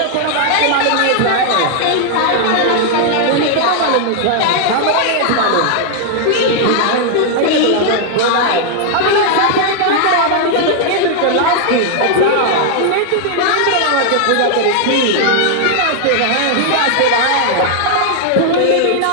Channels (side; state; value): both; different; correlation 0.00